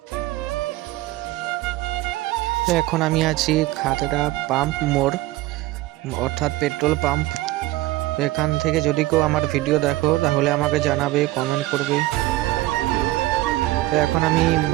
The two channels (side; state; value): left; quieter; 17.7 dB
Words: এখন আমি আছি খাতড়া পাম্প মোড়, অর্থাৎ পেট্রোল পাম্প। এখান থেকে যদি কেউ আমার ভিডিও দেখো তাহলে আমাকে জানাবে, কমেন্ট করবে। তো এখন আমি